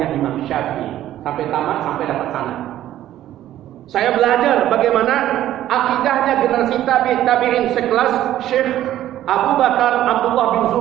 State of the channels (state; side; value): quieter; left; 12.9 dB